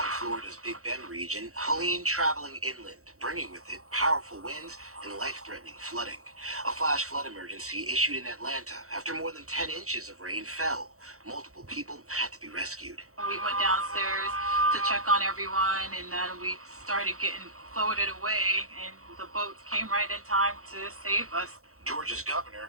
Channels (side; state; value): left; late; 0.64 ms